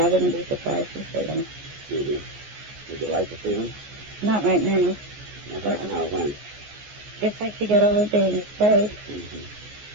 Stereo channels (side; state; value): left; late; 14 ms